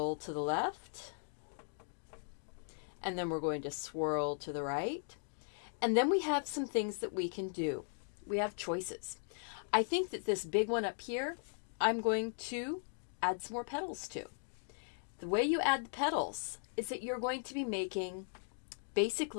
to the left. And then we're going to swirl to the right. And then we have some things that we can do. We have choices. I think that this big one up here, I'm going to add some more petals to. The way you add the petals is that you're going to be making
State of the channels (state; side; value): silent; right; digital silence